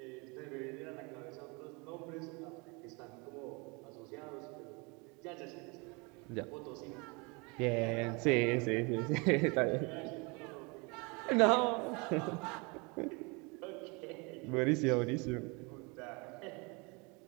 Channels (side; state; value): left; quieter; 29.1 dB